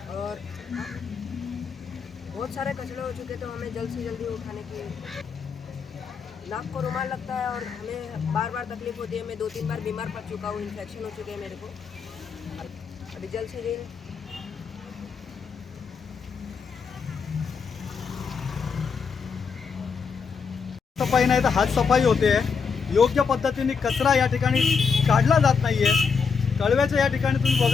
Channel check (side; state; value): right; quieter; 5.7 dB